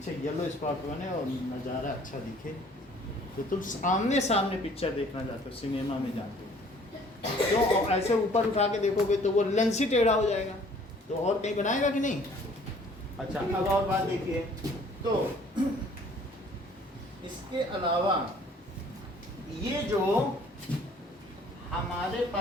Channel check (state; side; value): normal; both; correlation 0.56